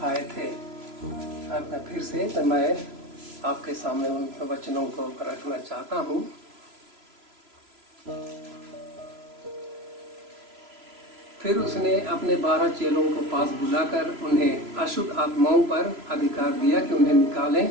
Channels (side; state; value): left; late; 3.0 ms